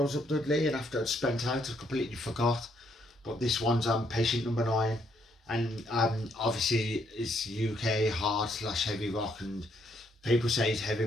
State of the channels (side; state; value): both; normal; correlation 0.72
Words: was up Dudley, and after I'd spent out, I completely forgot. But this one's Patient Number 9, and obviously it's UK hard / heavy rock, and people say it's heavy